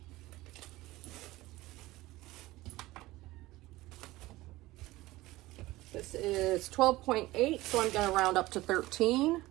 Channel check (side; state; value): left; quieter; 18.5 dB